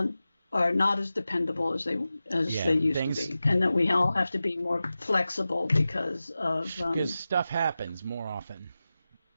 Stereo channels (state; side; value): inverted; both; correlation -0.94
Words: are not as dependable as they used to be, and that we all have to be more flexible because stuff happens more often.